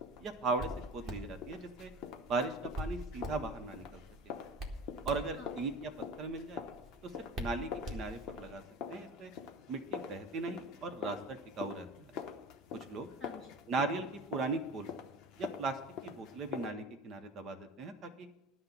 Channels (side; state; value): both; normal; correlation 0.36